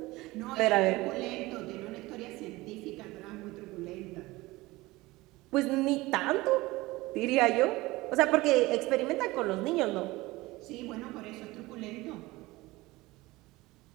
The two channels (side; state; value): left; quieter; 20.3 dB